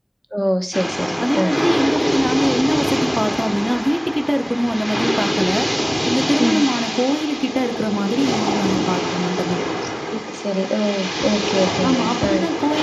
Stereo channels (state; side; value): identical; both; correlation 1.00